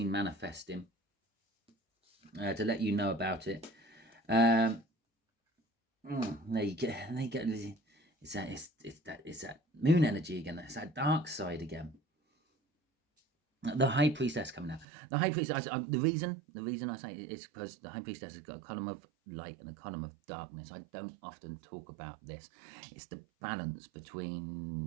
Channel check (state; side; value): drops out; left; at 14.9 s